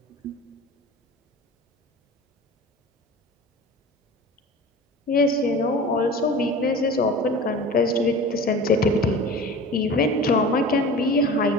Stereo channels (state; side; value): normal; both; correlation 0.37